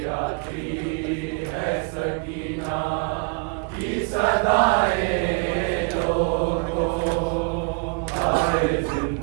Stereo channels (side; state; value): left; quieter; 32.8 dB